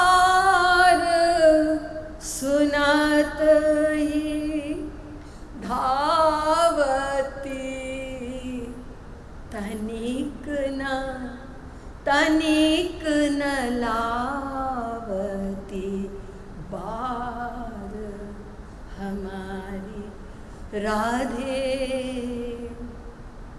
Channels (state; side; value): identical; both; correlation 1.00